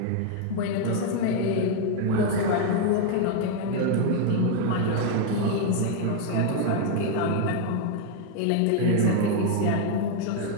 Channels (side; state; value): both; different; correlation 0.00